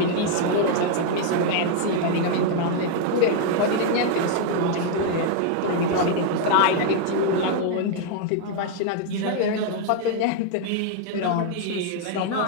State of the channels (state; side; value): different; both; correlation 0.00